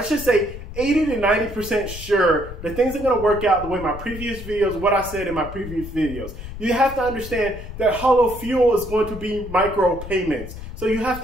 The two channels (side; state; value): left; noise; rumble, 11 dB below the sound